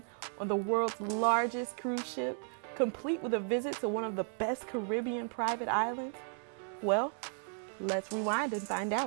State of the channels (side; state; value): left; silent; 55 dB below the other